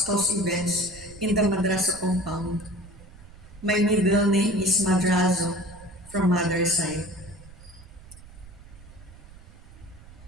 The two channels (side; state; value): right; noise; rumble, 20 dB below the sound